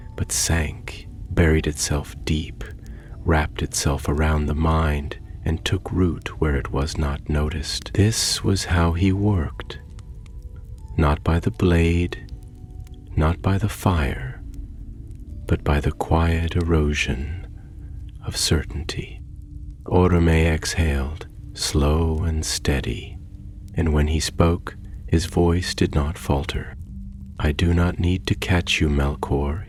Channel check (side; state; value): both; identical; correlation 1.00